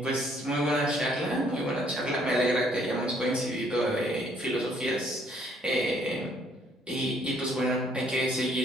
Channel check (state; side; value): normal; both; correlation 0.65